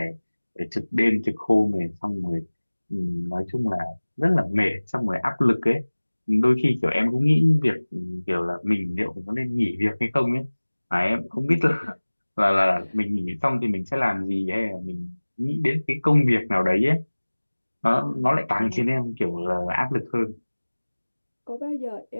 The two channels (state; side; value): inverted; both; correlation -1.00